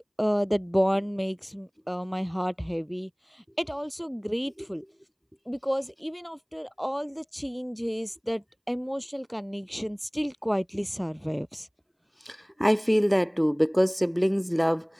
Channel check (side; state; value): both; identical; correlation 1.00